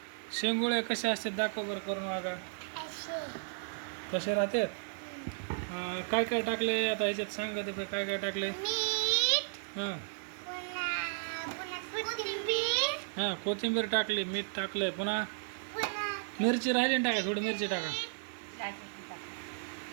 शेंगुळे कसे असतात दाखव बरं करून बघा. कसे राहतात? काय काय टाकले आता ह्याच्यात सांगा ते काय काय टाकले. हां हां कोथिंबीर टाकली, मीठ टाकलंय, पुन्हा मिरची राहिली ना टाका, थोडी मिरची टाका.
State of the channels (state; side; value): silent; left; 55 dB below the other